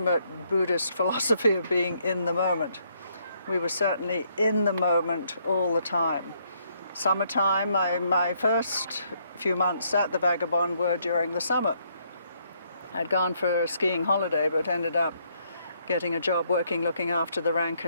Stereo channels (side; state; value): both; inverted; correlation -0.71